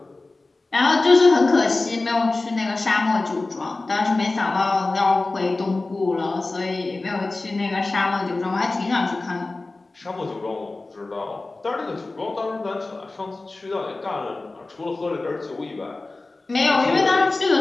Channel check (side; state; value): right; quieter; 3.3 dB